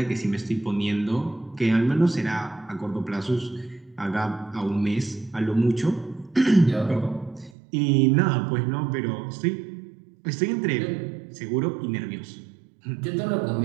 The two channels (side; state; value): left; drops out; at 7.6 s